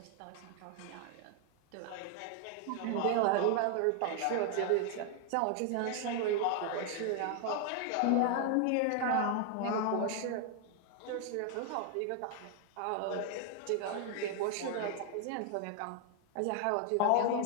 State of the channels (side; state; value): both; different; correlation 0.00